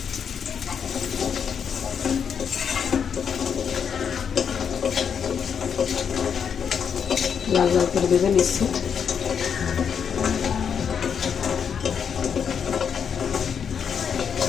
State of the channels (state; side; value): quieter; right; 7.2 dB